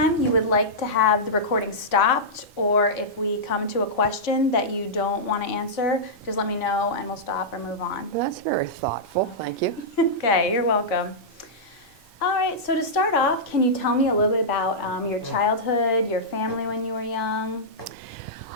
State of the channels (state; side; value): normal; both; correlation -0.12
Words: you would like to have the recording stopped, or if we come to a question that you don't want to answer, just let me know and we'll stop or move on. Well, that's very thoughtful. Thank you. Okay, you're welcome. All right, so to start off, can you tell me a little bit about your childhood, your family when you were young?